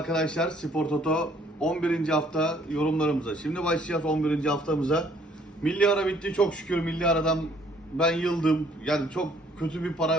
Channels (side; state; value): both; normal; correlation 0.62